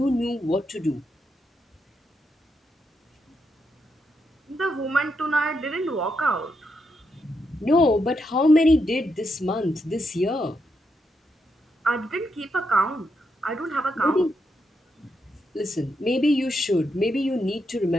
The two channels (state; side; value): normal; both; correlation 0.82